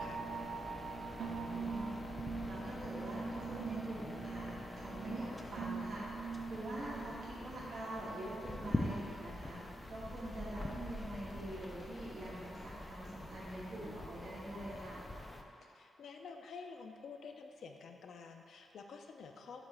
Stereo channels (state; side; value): normal; both; correlation 0.85